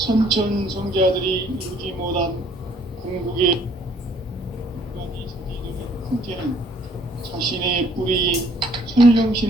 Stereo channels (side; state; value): both; normal; correlation 0.61